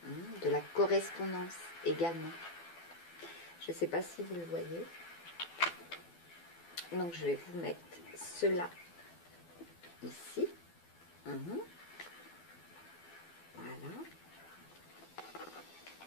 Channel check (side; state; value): right; late; 12 ms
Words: de la correspondance également. Je ne sais pas si vous le voyez. Donc je vais vous mettre cela ici. Voilà.